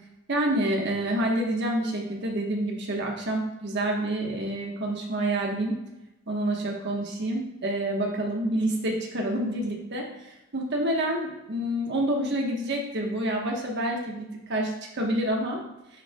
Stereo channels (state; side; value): normal; both; correlation 0.42